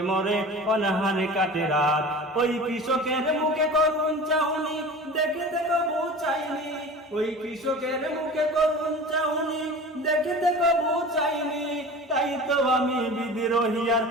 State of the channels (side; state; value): both; normal; correlation 0.36